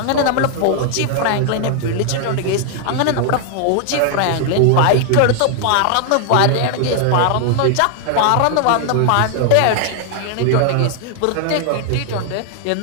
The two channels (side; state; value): both; different; correlation 0.00